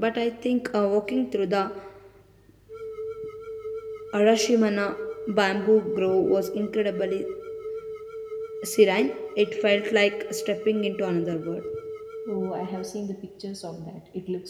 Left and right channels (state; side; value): identical; both; correlation 1.00